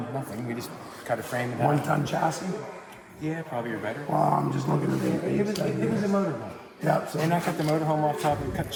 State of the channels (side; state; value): both; identical; correlation 1.00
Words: nothing. We just cut a frame and half. 1-ton chassis. Yeah, probably or better. Well, I'm just looking at the It was a motorhome. Yeah, so And I cut the motorhome off top and cut the